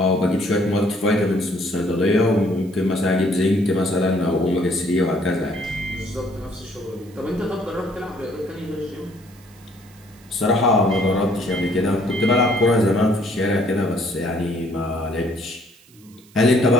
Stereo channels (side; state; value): right; noise; hiss, 27 dB below the sound